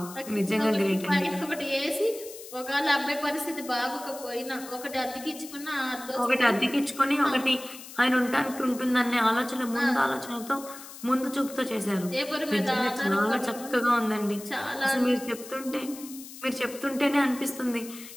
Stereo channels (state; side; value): noise; left; hiss, 15 dB below the sound